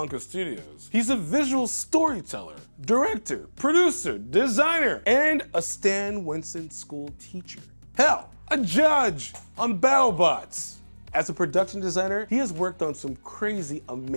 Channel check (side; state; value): both; inverted; correlation -1.00